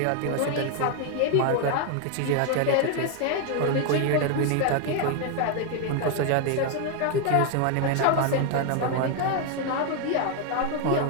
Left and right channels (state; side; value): different; both; correlation 0.01